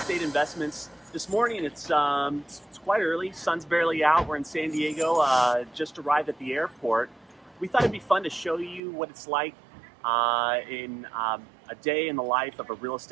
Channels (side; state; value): left; drops out; at 8.8 s